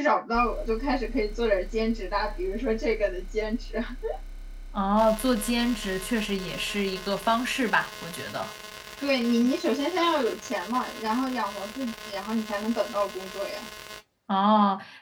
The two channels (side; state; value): both; identical; correlation 1.00